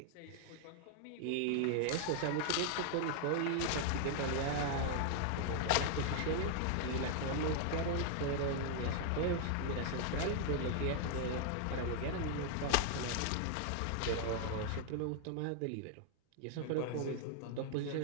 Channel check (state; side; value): different; both; correlation 0.00